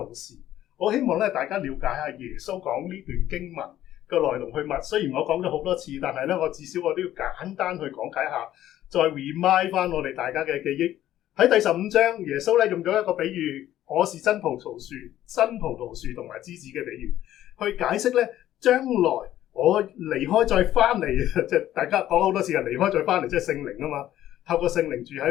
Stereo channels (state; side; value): quieter; right; 12.8 dB